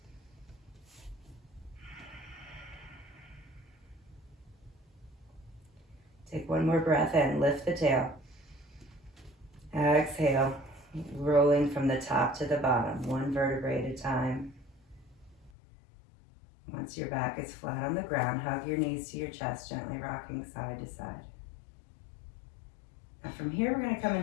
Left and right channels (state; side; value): drops out; right; at 15.5 s